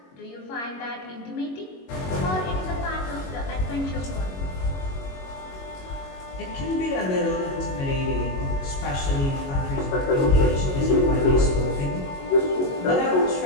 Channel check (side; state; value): right; late; 22 ms